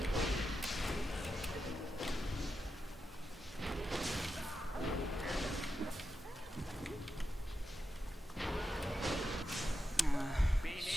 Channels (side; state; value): both; normal; correlation 0.88